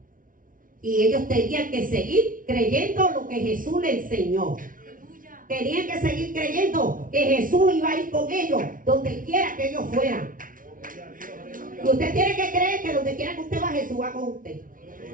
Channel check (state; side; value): late; left; 0.39 ms